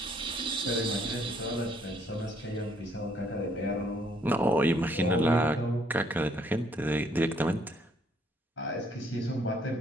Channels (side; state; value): both; normal; correlation 0.67